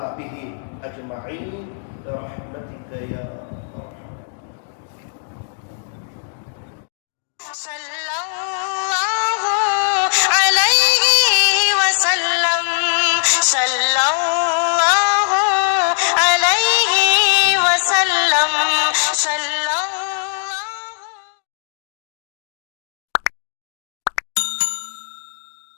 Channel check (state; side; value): silent; right; digital silence